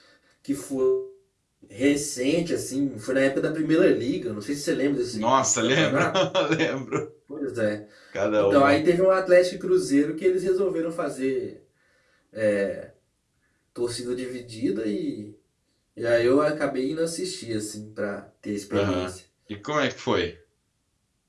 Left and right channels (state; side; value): identical; both; correlation 1.00